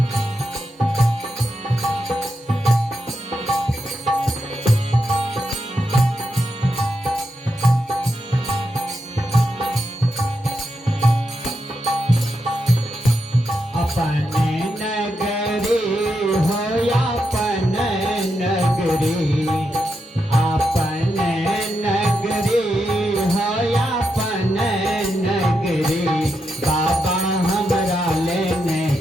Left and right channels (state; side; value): normal; both; correlation 0.85